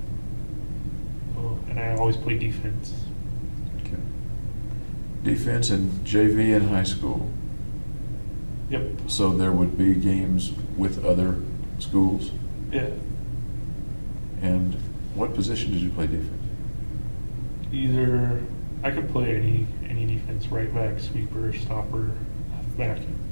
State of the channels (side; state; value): both; inverted; correlation -1.00